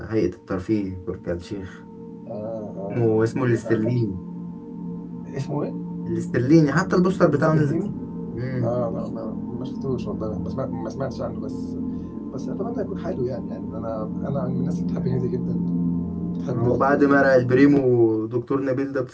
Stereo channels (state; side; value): identical; both; correlation 1.00